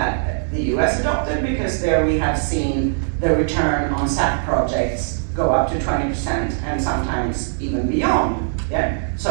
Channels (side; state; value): left; silent; digital silence